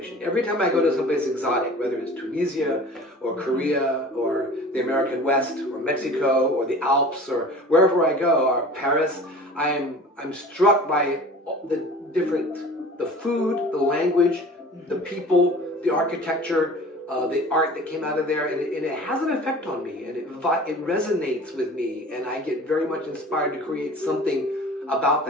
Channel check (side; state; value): both; normal; correlation 0.42